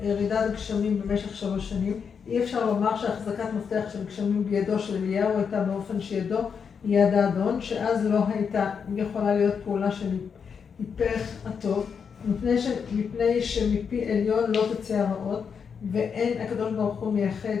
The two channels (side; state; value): right; quieter; 6.5 dB